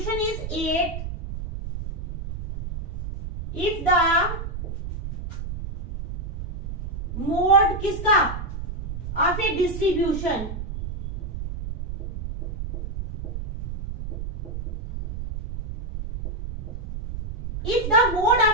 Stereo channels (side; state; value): right; noise; rumble, 6 dB below the sound